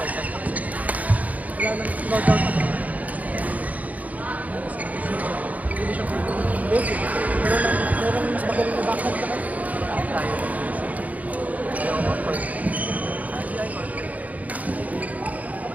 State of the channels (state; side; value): late; left; 0.073 ms